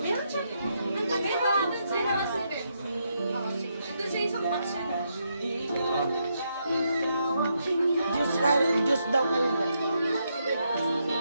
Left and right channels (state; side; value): inverted; both; correlation -0.79